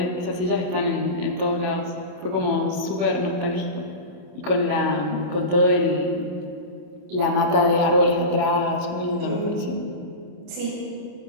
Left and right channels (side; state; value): left; late; 27 ms